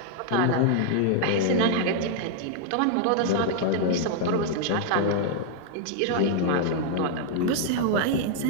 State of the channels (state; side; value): different; both; correlation -0.01